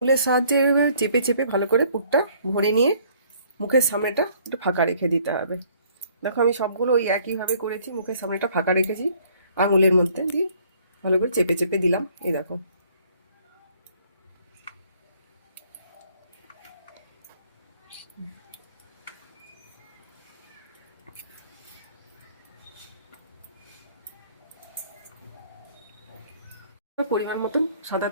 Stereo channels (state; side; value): inverted; both; correlation -0.61